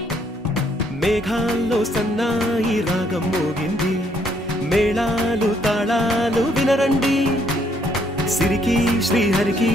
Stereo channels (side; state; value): both; normal; correlation 0.69